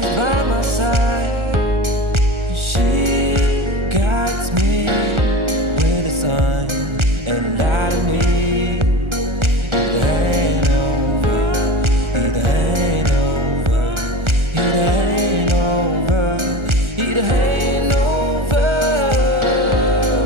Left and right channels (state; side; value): late; left; 1.4 ms